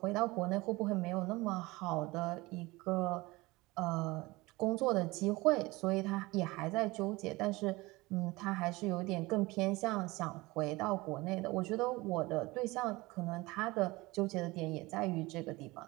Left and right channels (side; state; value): left; quieter; 21.7 dB